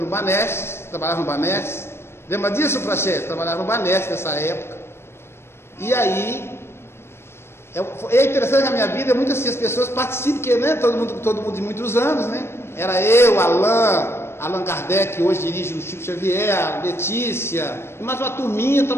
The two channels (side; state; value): right; late; 0.12 ms